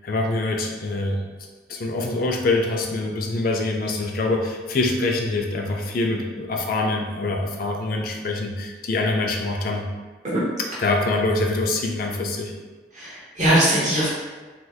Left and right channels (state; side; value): normal; both; correlation 0.45